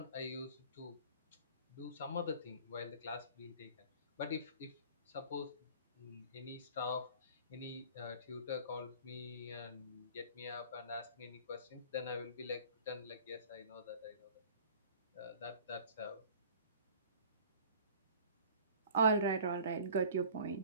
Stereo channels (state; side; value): inverted; both; correlation -0.47